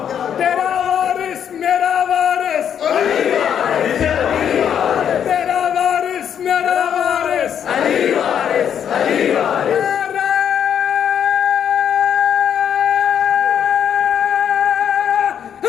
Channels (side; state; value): right; quieter; 8.7 dB